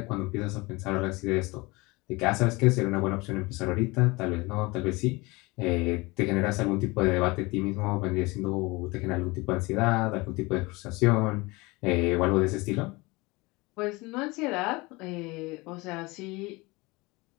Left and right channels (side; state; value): right; quieter; 24.0 dB